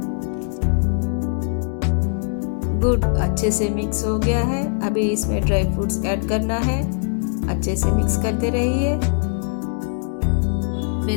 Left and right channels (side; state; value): right; silent; 65 dB below the other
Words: गुड़ अच्छे से मिक्स हो गया है। अभी इसमें ड्राई फ्रूट्स ऐड करना है। अच्छे से मिक्स करते रहिए।